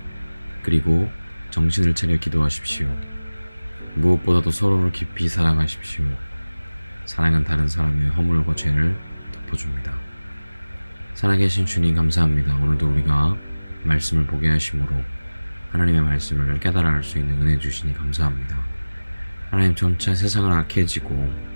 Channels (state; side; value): inverted; both; correlation -1.00